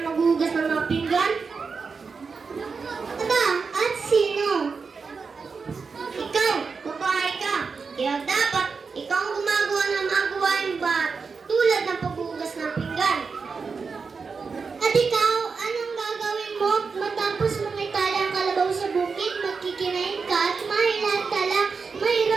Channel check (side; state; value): left; quieter; 5.0 dB